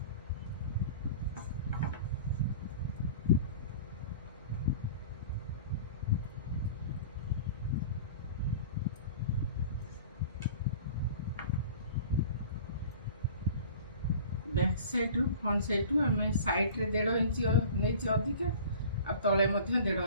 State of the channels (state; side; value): inverted; both; correlation -0.42